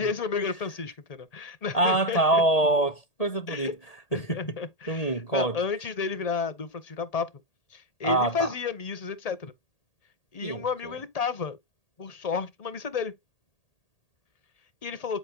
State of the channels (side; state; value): right; late; 1.8 ms